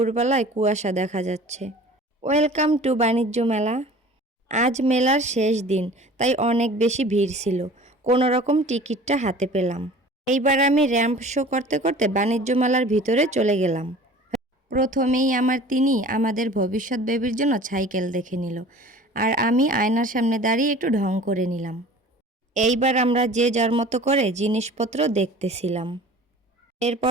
কুয়াশা দেখা যাচ্ছে। ওয়েলকাম টু বাণিজ্য মেলা। আজ মেলার শেষ দিন, তাই অনেক বেশি ভিড় ছিল। কোনো রকম টিকিটটা হাতে পেলাম। এইবার আমি র্যাম্প শো করতে করতে বাণিজ্য মেলার ভিতরে চলে গেলাম। প্রথমেই তিনি আমাদের ভবিষ্যৎ বেবির জন্য সাইকেল দেখে নিল, আর আমি আয়নার সামনে দাঁড়িয়ে একটু ঢং করে নিলাম। এইবার আমরা যে যার মতো করে জিনিসপত্র দেখতেছিলাম।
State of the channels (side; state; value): both; normal; correlation 0.44